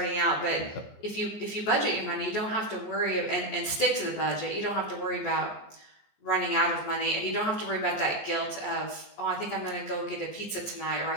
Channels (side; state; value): right; late; 14 ms